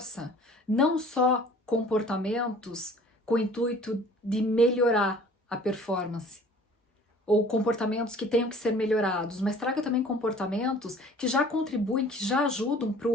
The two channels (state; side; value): normal; both; correlation 0.50